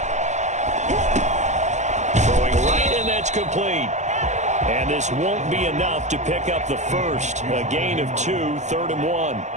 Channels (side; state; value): left; late; 0.34 ms